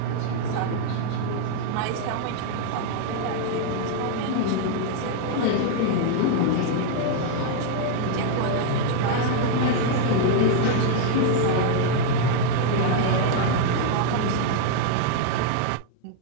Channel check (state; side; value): different; both; correlation 0.00